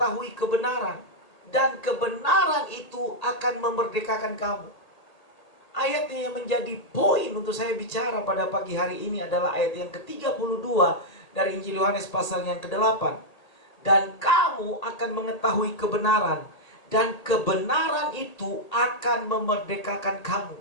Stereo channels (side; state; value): right; late; 1.8 ms